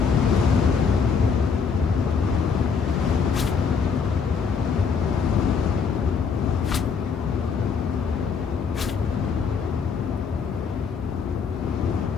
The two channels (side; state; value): right; quieter; 5.7 dB